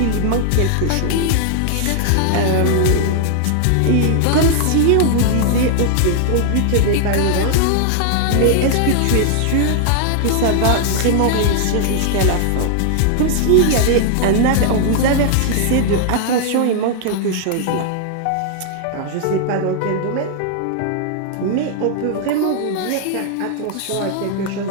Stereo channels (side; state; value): both; different; correlation 0.00